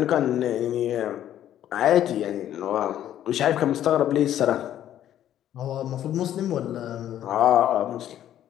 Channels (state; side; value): quieter; right; 11.4 dB